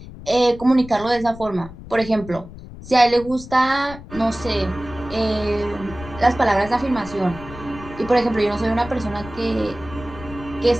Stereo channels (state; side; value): noise; left; rumble, 15 dB below the sound